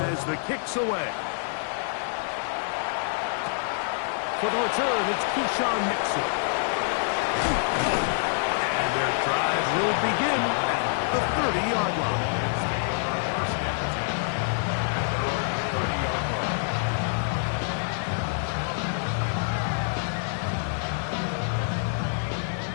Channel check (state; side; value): silent; right; digital silence